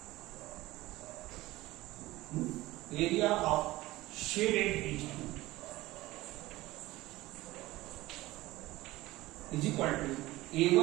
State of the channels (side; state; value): left; quieter; 18.1 dB